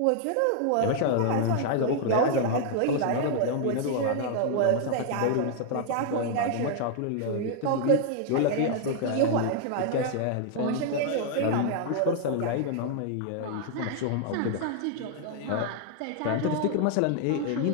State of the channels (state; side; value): different; both; correlation 0.00